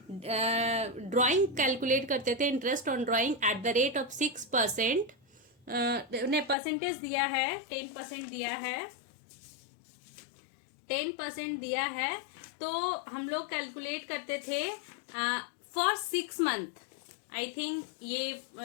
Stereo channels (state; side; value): drops out; right; at 6.6 s